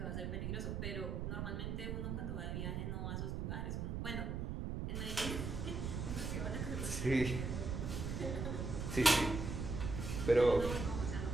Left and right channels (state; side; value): noise; right; rumble, 2 dB below the sound